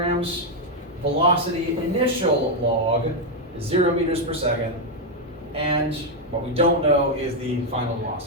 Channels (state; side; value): normal; both; correlation 0.02